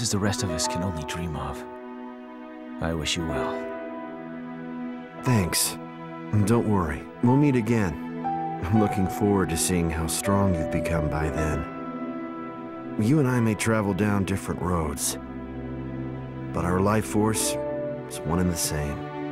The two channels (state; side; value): identical; both; correlation 1.00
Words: the rest of us can only dream of. I wish you well. Thanks. And don't worry, we'll meet again. I'm looking forward to seeing how strong you've become by then. You and I may travel down different roads, but our life force is one and the same.